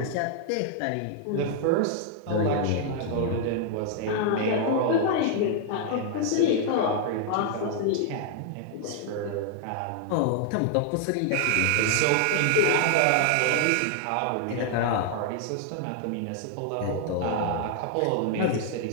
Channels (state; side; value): different; both; correlation 0.00